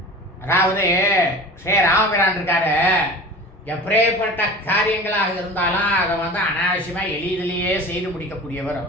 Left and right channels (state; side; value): normal; both; correlation 0.37